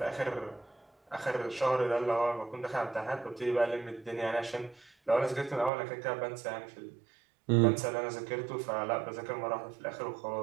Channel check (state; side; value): drops out; left; at 5.7 s